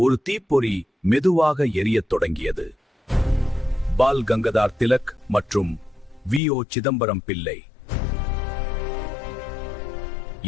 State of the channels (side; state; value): right; drops out; at 6.4 s